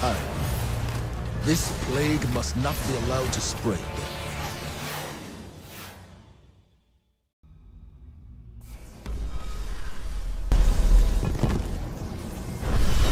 This plague must not be allowed to spread.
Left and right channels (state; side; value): identical; both; correlation 1.00